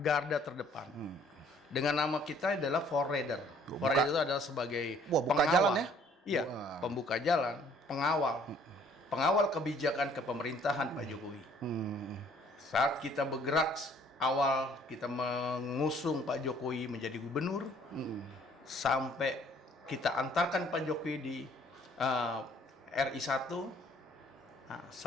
Garda terdepan. Dengan nama kita adalah Forader. Buka- Forader itu adalah sebagai Wah, buka pengawal. jalan ya? Iya, Wah. pembuka jalan, pengawal. Pengawal kebijakan kepemerintahan Pak Jokowi. Saat kita bergerak awal kita mengusung Pak Jokowi menjadi gubernur, sampai kita antarkan Pak Jokowi di RI 1,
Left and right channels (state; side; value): normal; both; correlation 0.59